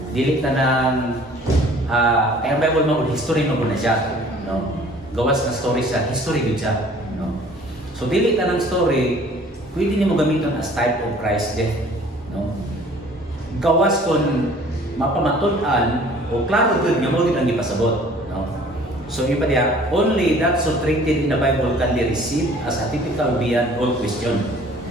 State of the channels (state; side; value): normal; both; correlation 0.52